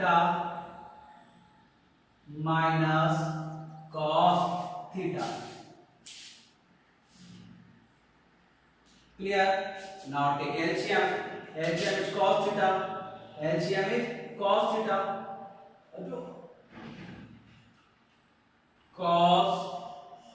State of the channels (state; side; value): identical; both; correlation 1.00